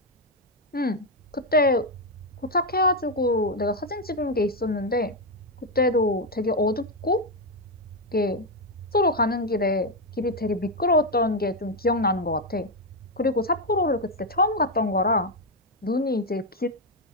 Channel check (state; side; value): normal; both; correlation 0.04